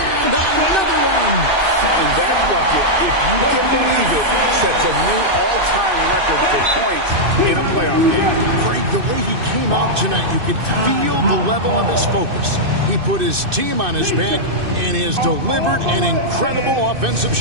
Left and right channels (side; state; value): left; late; 2.6 ms